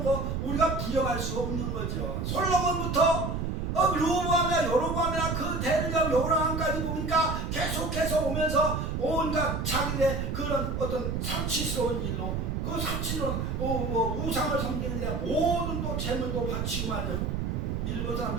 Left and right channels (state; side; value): noise; right; rumble, 2 dB below the sound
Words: 거 우리가 부정할 수 없는 거죠. 솔로몬부터 르호보암이나 여로보암이나 그 대들과 요람까지 보니까 계속해서 오면서 온갖 자기의 그런 어떤 사치스러운 일로 그 사치는 우상을 섬기는 데 모든 또 재물도 바치고 말이죠. 일본